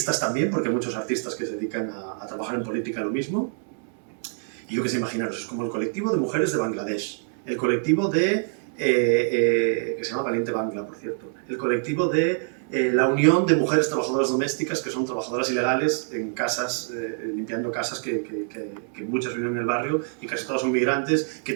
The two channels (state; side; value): silent; left; 59 dB below the other